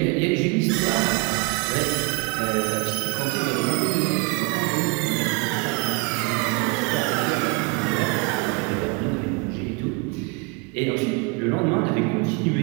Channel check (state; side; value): quieter; left; 27.4 dB